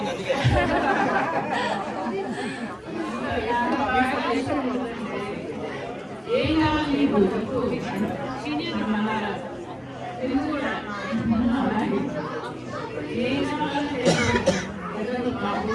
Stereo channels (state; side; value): identical; both; correlation 1.00